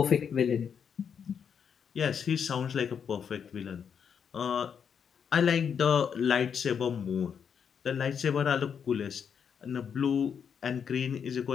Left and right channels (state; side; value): quieter; right; 7.3 dB